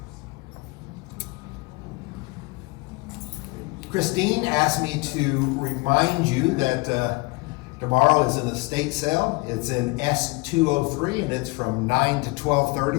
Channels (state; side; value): quieter; right; 26.1 dB